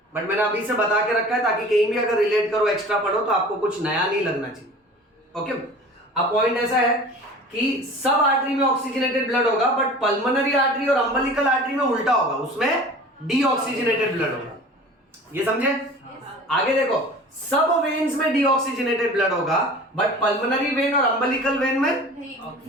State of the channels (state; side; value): normal; both; correlation 0.41